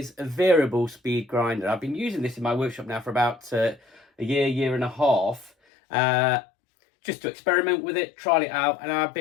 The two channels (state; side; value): drops out; right; at 5.5 s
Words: a variable speed grinder. I've been using this in my workshop now for about a year and a half, just to experiment with it, trial it out, and I've